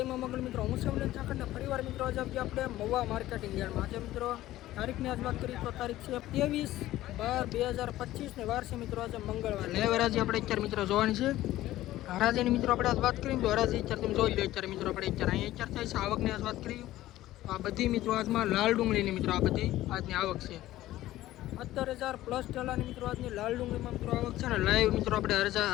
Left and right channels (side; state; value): right; quieter; 15.2 dB